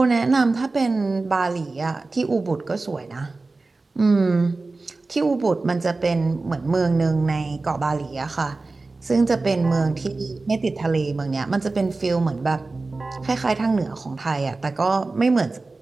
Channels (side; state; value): left; quieter; 3.5 dB